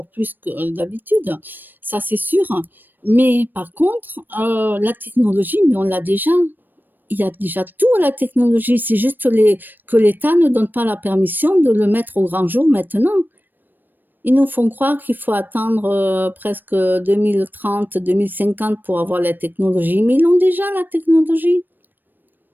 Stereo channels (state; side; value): late; left; 0.092 ms